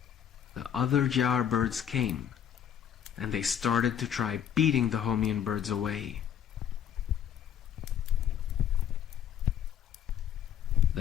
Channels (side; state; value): right; quieter; 9.4 dB